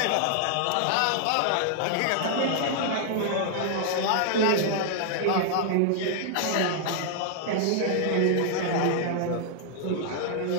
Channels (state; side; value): different; both; correlation -0.01